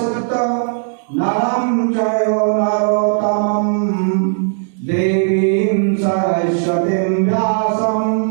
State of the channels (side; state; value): left; silent; digital silence